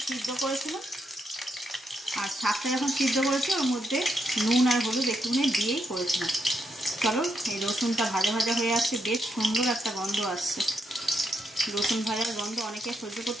সিদ্ধ করেছি ওর মধ্যে নুন আর হলুদ একটুখানি দিয়েই করেছিলাম। চলো এই রসুনটা ভাজা ভাজা হয়ে আসছে, বেশ সুন্দর একটা গন্ধ আসছে। রসুন ভাজার গন্ধ অনেকে সহ্য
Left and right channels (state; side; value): normal; both; correlation 0.80